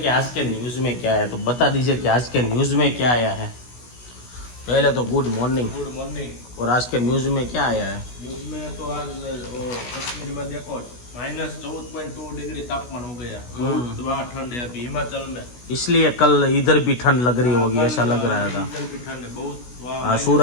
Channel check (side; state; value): right; late; 16 ms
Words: कि आज के न्यूज में क्या है, तो बता दीजिए कि आज के न्यूज में क्या आया है। पहले तो गुड मॉर्निंग। Good morning. और आज के न्यूज में क्या आया है? न्यूज में तो आज कश्मीर में देखो -14.2 डिग्री तापमान हो गया। बहुत वहाँ ठंड है अभी हिमाचल में, इसलिए कल इधर भी ठंड लग रही होगी, ऐसा लग रहा था। इधर भी ठंड है बहुत वहाँ।